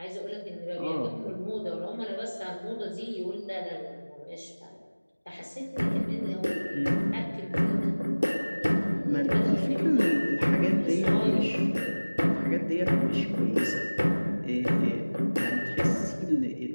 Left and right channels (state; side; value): inverted; both; correlation -1.00